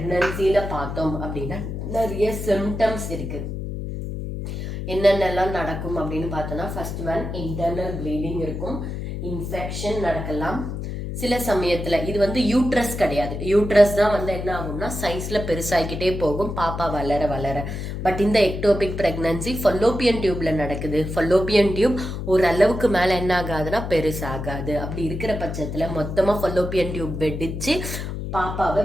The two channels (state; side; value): noise; left; hum, 5 dB below the sound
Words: பார்த்தோம் அப்படின்னா நிறைய சிம்டம்ஸ் இருக்கு. என்னென்னலாம் நடக்கும் அப்படின்னு பார்த்தோம்னா ஃபர்ஸ்ட் ஒன் இன்டர்னல் ப்ளீடிங் இருக்கும், இன்ஃபெக்ஷன் நடக்கலாம். சில சமயத்துல இது வந்து யூட்ரஸ் கிடையாது, யூட்ரஸ் தான் வந்து என்ன ஆகும்னா சைஸ்ல பெருசாகிக்கிட்டே போகும் பாப்பா வளர வளர. பட் இந்த எக்டோபிக் பிரெக்னன்சி ஃபலோப்பியன் டியூப்ல நடக்குது. ஃபலோப்பியன் டியூப் ஒரு அளவுக்கு மேல என்ன ஆகாதுன்னா பெருசாகாது. அப்படி இருக்கிற பட்சத்துல மொத்தமா ஃபலோப்பியன் டியூப் வெடிச்சு பாப்பாவை